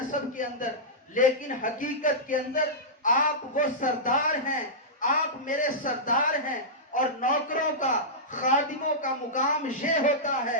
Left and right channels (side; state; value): both; normal; correlation -0.13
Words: के अंदर, लेकिन हकीकत के अंदर आप वो सरदार हैं, आप मेरे सरदार हैं। और नौकरों का, खादिमों का मुकाम ये होता है